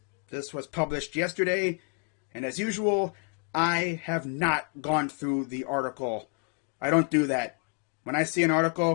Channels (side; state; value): right; quieter; 35.1 dB